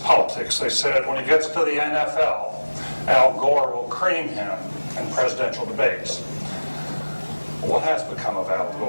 politics. They said when he gets to the NFL, Al Gore will cream him in presidential debates. What has become of Al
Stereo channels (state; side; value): inverted; both; correlation -1.00